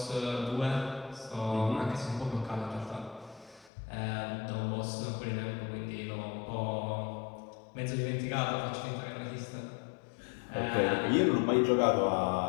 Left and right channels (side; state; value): right; drops out; at 3.7 s